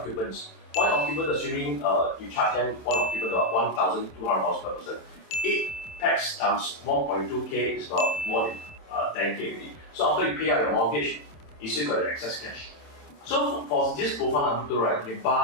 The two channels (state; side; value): late; right; 27 ms